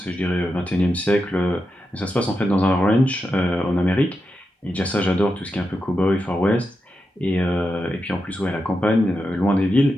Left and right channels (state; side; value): normal; both; correlation 0.88